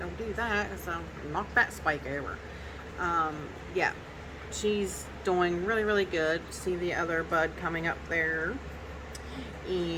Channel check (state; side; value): identical; both; correlation 1.00